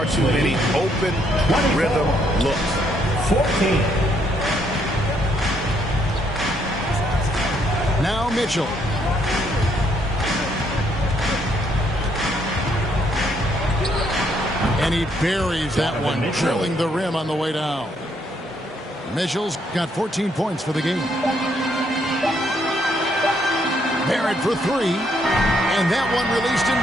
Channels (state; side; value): normal; both; correlation 0.71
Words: too many open rhythm looks. 14. Now Mitchell. And he buries that one, drilling the rim on the way down. Mitchell's got 14 points for the game. Barrett for 3. And that one released